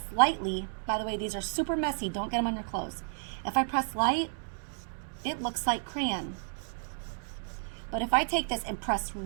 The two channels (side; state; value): left; silent; digital silence